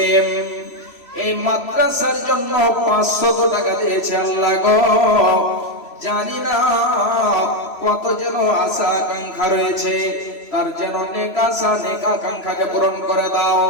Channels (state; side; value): late; right; 3.0 ms